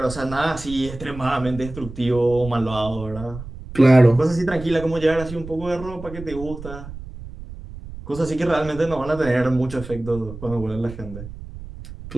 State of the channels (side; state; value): right; noise; rumble, 13 dB below the sound